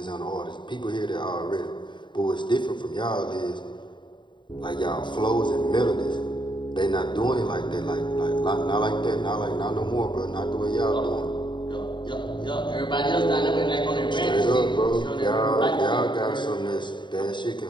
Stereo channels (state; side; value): late; right; 0.23 ms